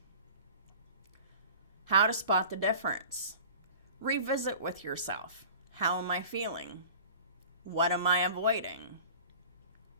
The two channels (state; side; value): inverted; both; correlation -0.42